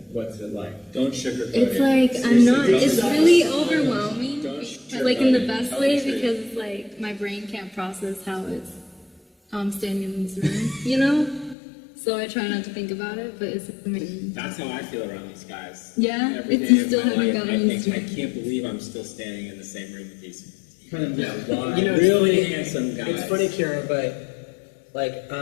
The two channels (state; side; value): drops out; right; at 11.6 s